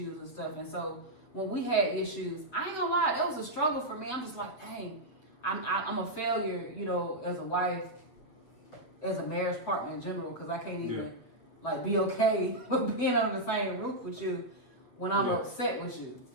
and stuff. And so when we had issues, I ain't gonna lie, it was a struggle for me. I'm just like, dang, I'm a failure, as a wife, as a marriage partner in general, because I can't even like be okay with being under the same roof with you when I'm upset with you.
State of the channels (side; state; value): right; late; 7.8 ms